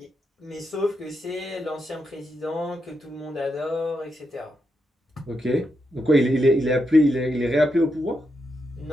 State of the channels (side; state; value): both; normal; correlation 0.83